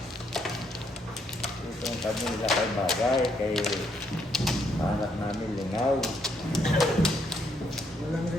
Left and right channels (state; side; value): normal; both; correlation 0.73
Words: Itong kami nila kay bagay, kay anak namin lingaw. Walang